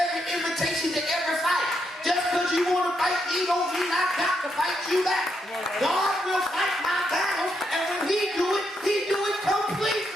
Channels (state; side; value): normal; both; correlation 0.79